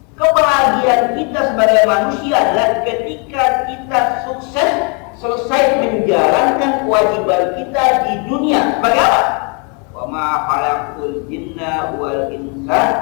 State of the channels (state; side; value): quieter; right; 35.3 dB